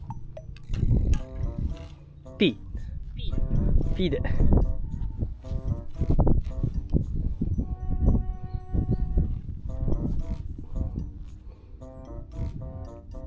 P。P で。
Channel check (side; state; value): both; identical; correlation 1.00